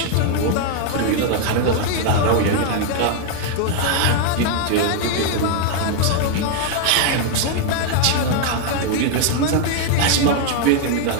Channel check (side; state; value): both; different; correlation 0.00